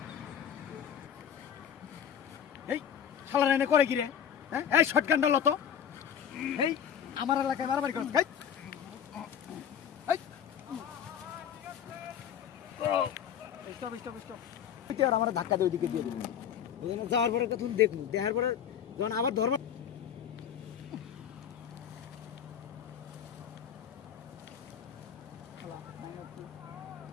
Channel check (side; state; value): right; quieter; 8.6 dB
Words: এই শালারা এনে করে কি রে? হ্যাঁ এই শটগানটা লতো এই আমার এলাকায় মারামারি করছ এই স্টপ স্টপ স্টপ। তুই আর আমার ধাক্কা দিয়ে ওইদিকে দিয়ে দিবি বুঝলি না? যাওয়ার পরে কথা দেখবো, দেখার পরে যখন আবার ধর্ম